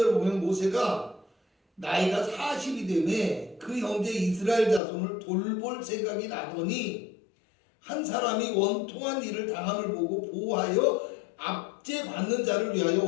보면 모세가 나이가 40이 되매 그 형제 이스라엘 자손을 돌볼 생각이 나더니 한 사람이 원통한 일을 당함을 보고 보호하여 압제받는 자를 위하여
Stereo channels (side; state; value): right; drops out; at 4.8 s